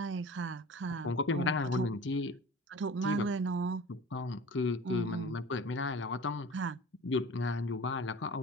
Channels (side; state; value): both; normal; correlation 0.40